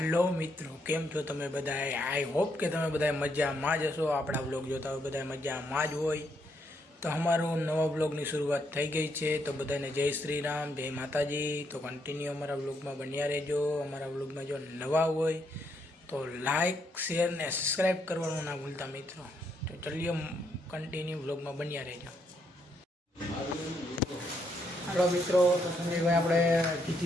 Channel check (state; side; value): normal; both; correlation 0.76